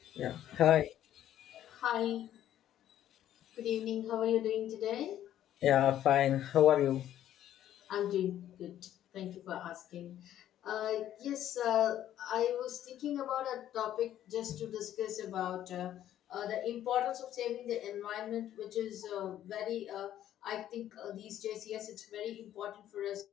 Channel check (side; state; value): right; quieter; 11.7 dB